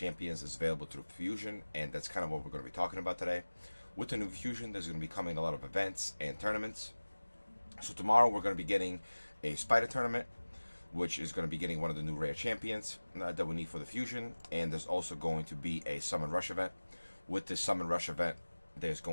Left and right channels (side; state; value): both; inverted; correlation -1.00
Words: is available through Fusion, and that's kind of what we're going to be talking about today. With the new Fusion, there's going to be coming a lot of events and tournaments. So tomorrow we're going to be getting a Spider tournament, which is going to be getting one of the new rare champions that we need for the Fusion, and there's also going to be a Summon Rush event. With this Summon Rush event, there's